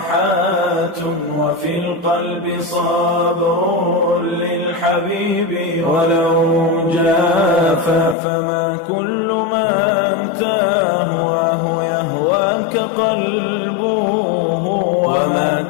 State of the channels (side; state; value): right; drops out; at 8.2 s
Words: وفي القلب صبر للحبيب ولو جاف. فما كل من تهواه يهواك قلبه، وما